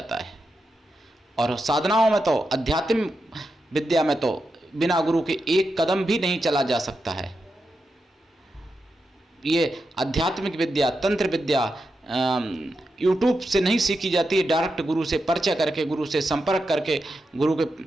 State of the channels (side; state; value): both; normal; correlation 0.88